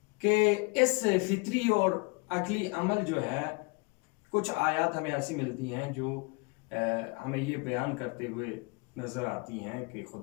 کہ اس فطری اور عقلی عمل جو ہے، کچھ آیات ہمیں ایسی ملتی ہیں جو ہمیں یہ بیان کرتے ہوئے نظر آتی ہیں کہ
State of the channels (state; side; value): quieter; right; 30.0 dB